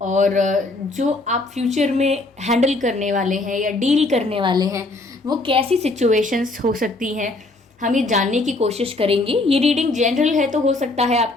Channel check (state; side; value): quieter; right; 3.1 dB